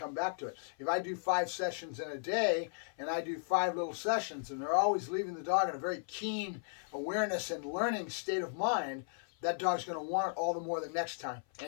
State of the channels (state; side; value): silent; right; 54 dB below the other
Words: back to it. If I do 5 sessions in a day and I do 5 little sessions, and they're always leaving the dog in a very keen awareness and learning state of mind, that dog's going to want it all the more the next time,